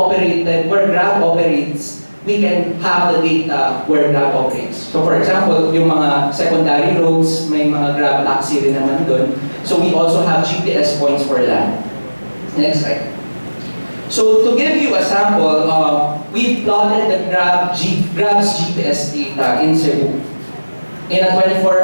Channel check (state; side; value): inverted; both; correlation -1.00